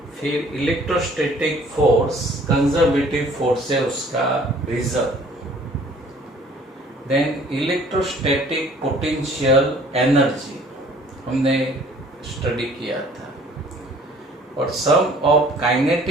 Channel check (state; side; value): normal; both; correlation 0.54